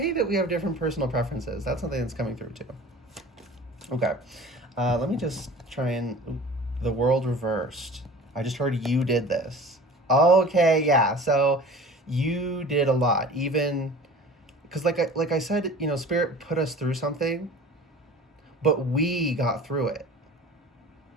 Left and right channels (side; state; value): both; normal; correlation 0.42